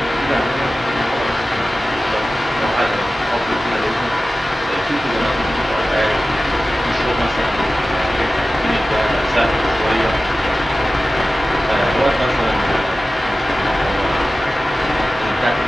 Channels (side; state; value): both; normal; correlation 0.96